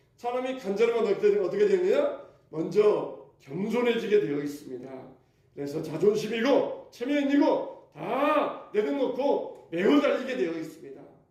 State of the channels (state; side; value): identical; both; correlation 1.00